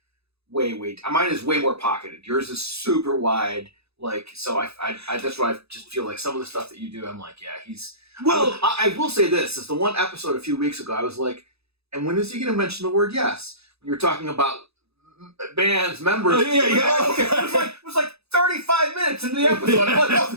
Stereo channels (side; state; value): left; late; 0.79 ms